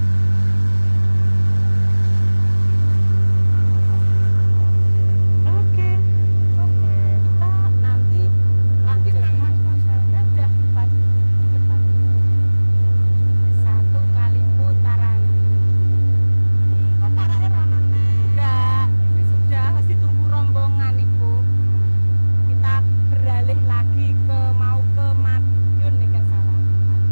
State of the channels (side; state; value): both; inverted; correlation -1.00